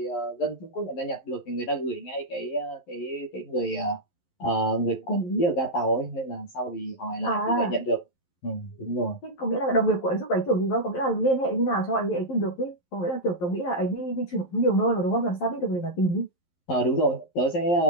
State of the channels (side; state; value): right; late; 11 ms